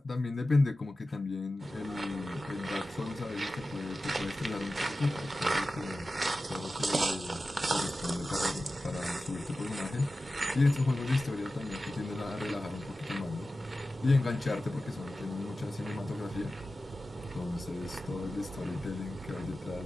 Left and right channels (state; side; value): normal; both; correlation 0.94